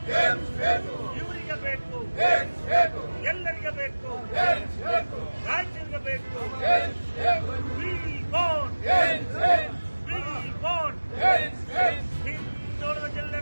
ಇವರಿಗೆ ಬೇಕು, ಎಲ್ಲರಿಗೆ ಬೇಕು, ರಾಜ್ಯರಿಗೆ ಬೇಕು. ಹಿಂದುಳಿದ ಜಿಲ್ಲೆ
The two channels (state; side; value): inverted; both; correlation -1.00